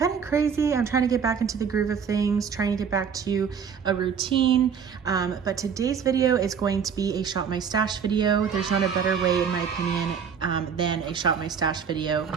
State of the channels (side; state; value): left; quieter; 6.9 dB